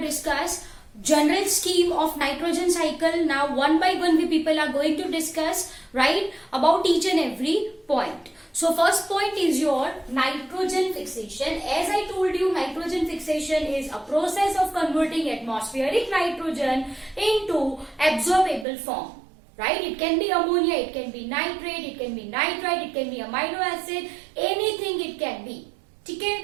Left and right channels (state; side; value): drops out; left; at 18.7 s